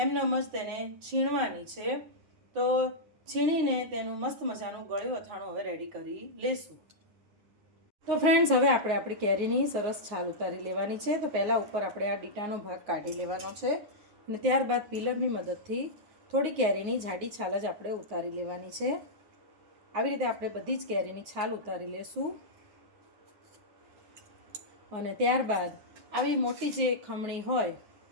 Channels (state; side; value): late; left; 9.5 ms